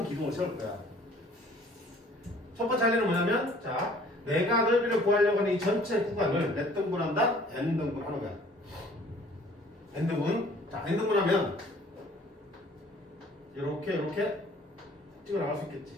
기둥을 세울 거야. 첫 번째 할 일은 뭐냐면, 자, 내가 넓이를 구하려고 하는 이 전체 구간을 몇 등분한다? n등분 하는 거야. n등분. 자, n등분 하면 이렇게 찍어 나갈 수 있겠지.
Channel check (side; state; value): both; normal; correlation 0.54